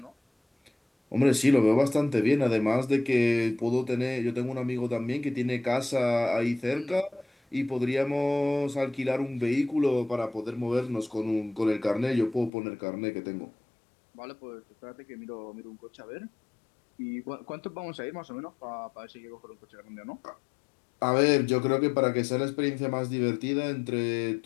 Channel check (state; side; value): drops out; right; at 12.5 s